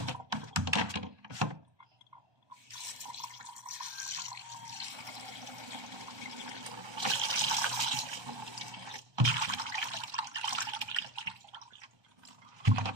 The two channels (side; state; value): left; late; 1.2 ms